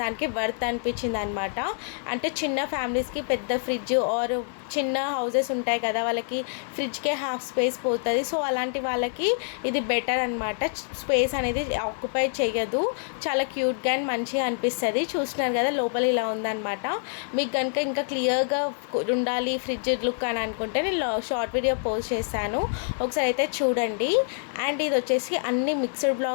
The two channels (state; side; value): silent; right; 61 dB below the other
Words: దానికి వర్త్ అనిపించింది అనమాట. అంటే చిన్న ఫ్యామిలీస్కి పెద్ద ఫ్రిడ్జ్ ఆర్ చిన్న హౌసెస్ ఉంటాయి కదా, వాళ్ళకి ఫ్రిడ్జ్కే హాఫ్ స్పేస్ పోతుంది. సో అలాంటి వాళ్ళకి ఇది బెటర్ అనమాట. స్పేస్ అనేది ఆక్యుపై చేయదు. చాలా క్యూట్గా అండ్ మంచిగా అనిపిస్తుంది. చూస్తున్నారు కదా లోపల ఇలా ఉందన్నమాట. మీకు కనుక ఇంకా క్లియర్గా ఉండాలి ఫ్రిడ్జ్ లుక్ అని అనుకుంటే నేను షార్ట్ వీడియో పోస్ట్ చేశాను, ఒకసారి అయితే చూడండి. అండ్ ఇది వచ్చేసి అన్ని మిక్స్డ్